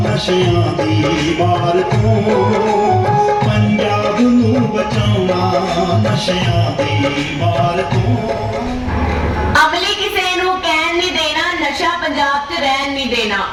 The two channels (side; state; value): both; identical; correlation 1.00